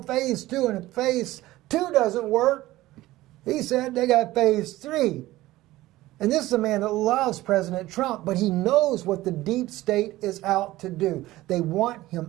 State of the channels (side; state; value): left; quieter; 17.0 dB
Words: phase 2, and if phase 2 doesn't work, he said they got phase 3. And this is a man that loves President Trump, but he knows what the deep state is out to do. They want